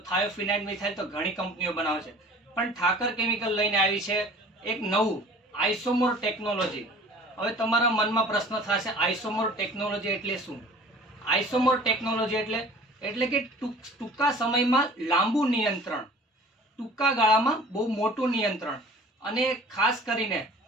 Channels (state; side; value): normal; both; correlation 0.46